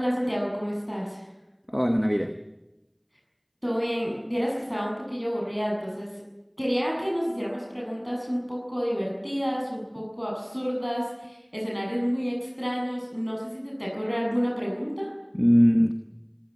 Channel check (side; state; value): both; identical; correlation 1.00